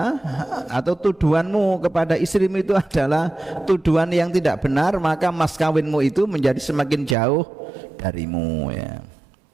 atau tuduhanmu kepada istrimu itu adalah tuduhan yang tidak benar, maka mas kawinmu itu menjadi semakin jauh darimu ya.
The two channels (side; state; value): left; drops out; at 7.2 s